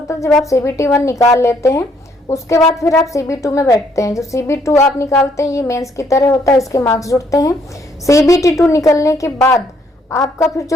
है, जब आप CBT 1 निकाल लेते हैं उसके बाद फिर आप CB2 में बैठते हैं। जो CB2 आप निकालते हैं ये मेंस की तरह होता है, इसके मार्क्स जुड़ते हैं। CBT 2 निकलने के बाद आपका फिर जो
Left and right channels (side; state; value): both; normal; correlation 0.68